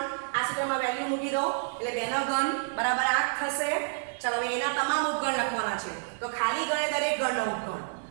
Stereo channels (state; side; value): silent; left; digital silence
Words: આ સૂત્રમાં વેલ્યુ મૂકી દો એટલે 2 નો ઘન બરાબર 8 થશે. ચાલો હવે એના તમામ ઉપગણ લખવાના છે. તો ખાલી ગણે દરેક ગણનો ઉપગણ